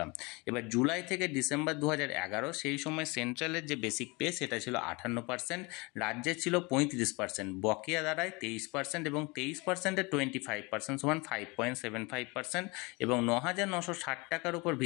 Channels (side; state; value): right; quieter; 26.8 dB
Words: এবার জুলাই থেকে ডিসেম্বর 2011 সেই সময় সেন্ট্রালের যে বেসিক পে সেটা ছিল 58%, রাজ্যের ছিল 35%, বকেয়া দাঁড়ায় 23% এবং 23%-এর 25% সমান 5.75% এবং 9,960 টাকার উপর